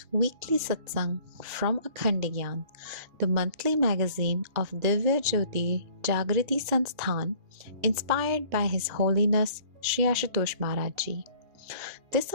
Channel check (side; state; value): left; late; 2.7 ms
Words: weekly Satsang from Akhand Gyan, the monthly magazine of Divya Jyoti Jagriti Sansthan, inspired by His Holiness Shri Ashutosh Maharaj ji. This